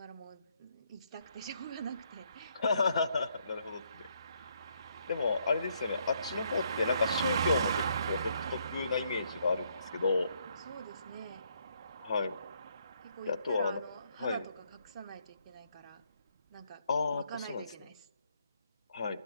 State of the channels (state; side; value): inverted; both; correlation -0.72